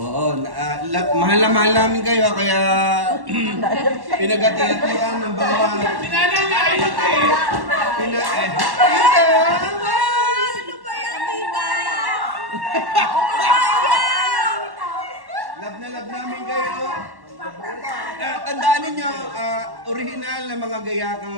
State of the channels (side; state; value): left; late; 1.1 ms